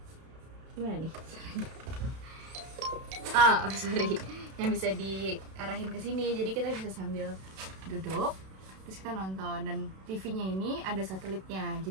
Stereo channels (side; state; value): left; late; 32 ms